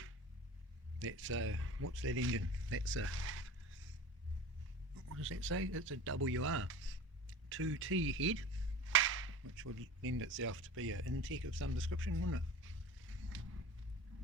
That's what's that engine? That's a, what does that say? It's a WR 2T head, which would lend itself to be an intake of some description, wouldn't it?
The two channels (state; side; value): normal; both; correlation 0.35